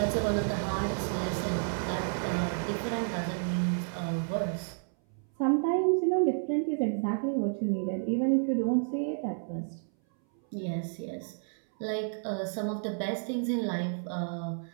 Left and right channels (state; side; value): silent; left; 57 dB below the other